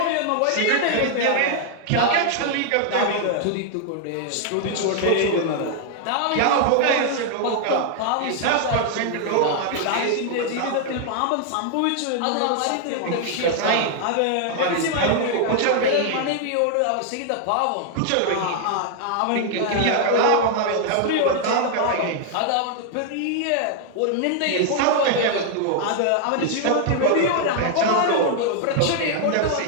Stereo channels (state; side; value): different; both; correlation 0.00